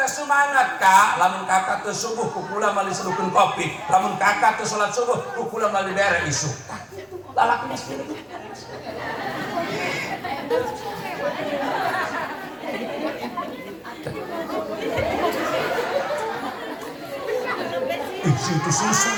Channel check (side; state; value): both; identical; correlation 1.00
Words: semangat ka lamun kakak teu subuh ku kula mali sedukeun kopi lamun kakak teu salat subuh ku kula mali bere isuk lalaki mesti itu